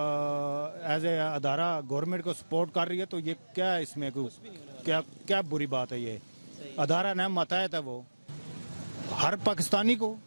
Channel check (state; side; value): inverted; both; correlation -1.00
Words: ایز اے ادارہ گورنمنٹ کو سپورٹ کر رہی ہے تو یہ کیا اس میں کیا بری بات ہے. یہ ادارہ نہ ماتحت ہے. وہ ہر پاکستانی کو